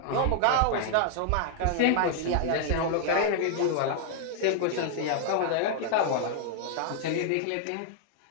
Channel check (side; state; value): both; different; correlation -0.01